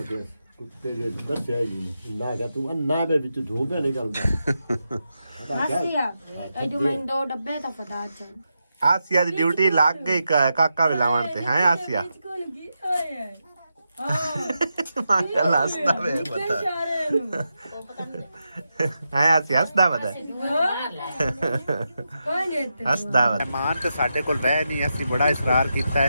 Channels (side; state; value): both; inverted; correlation -0.87